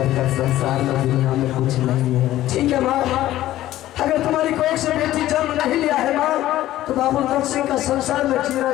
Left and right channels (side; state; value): right; quieter; 14.4 dB